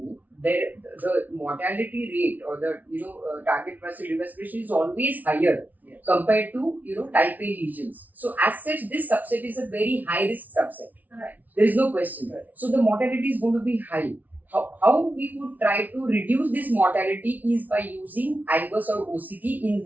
the mortality rate or the target muscle respiration is always higher compared to type A lesions. So as such, this subset is a very high risk subset. Right. There is no question. So the mortality is going to be high. How we would try to reduce this mortality is by using IVUS or OCT in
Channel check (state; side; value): late; left; 0.077 ms